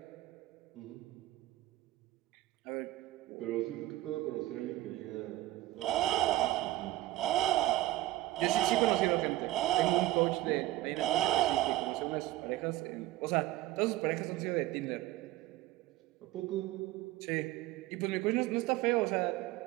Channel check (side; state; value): left; quieter; 16.4 dB